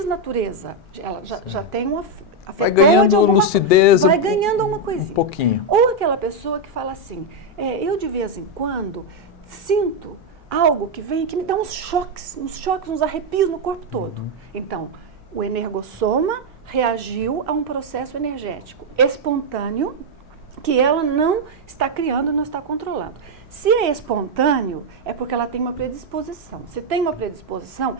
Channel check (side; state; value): both; normal; correlation 0.02